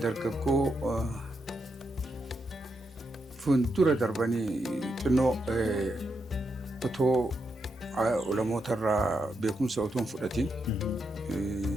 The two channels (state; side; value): normal; both; correlation 0.83